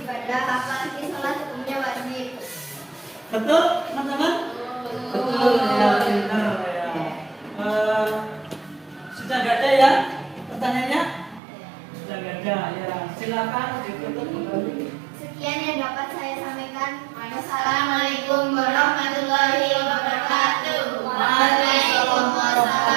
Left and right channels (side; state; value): left; drops out; at 11.4 s